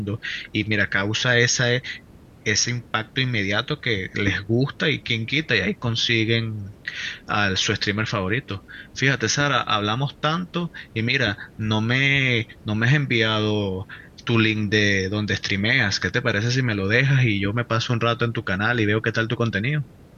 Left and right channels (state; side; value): identical; both; correlation 1.00